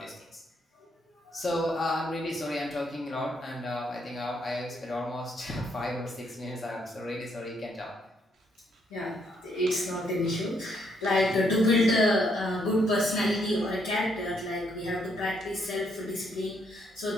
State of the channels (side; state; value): both; normal; correlation 0.73